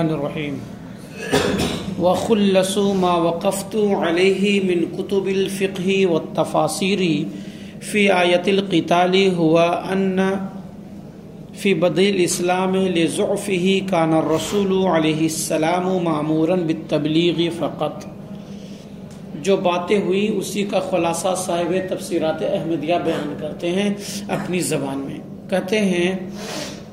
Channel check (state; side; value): identical; both; correlation 1.00